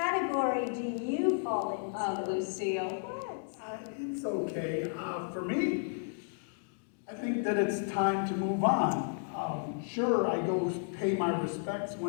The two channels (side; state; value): right; silent; digital silence